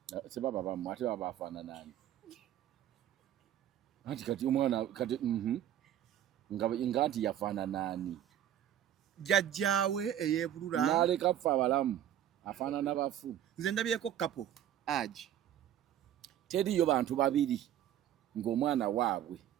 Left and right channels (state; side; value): quieter; left; 11.1 dB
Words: sebaba bamu ate baba afana nani ati kati omwana kati ngati yafana nani jajjawe eyebulura naleka fa abalamu afana n'abafu nze ndabyeko kapo aji teriyo bantu babiri ng'omwana waabwe